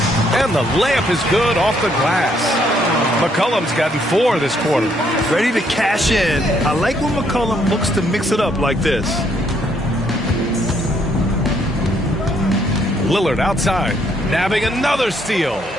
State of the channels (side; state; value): both; normal; correlation 0.70